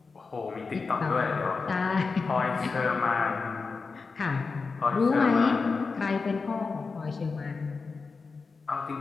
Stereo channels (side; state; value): right; quieter; 4.5 dB